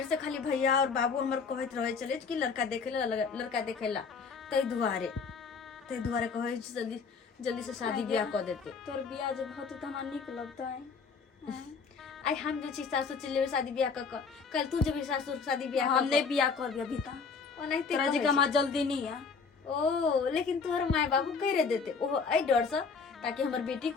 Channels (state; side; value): quieter; right; 5.3 dB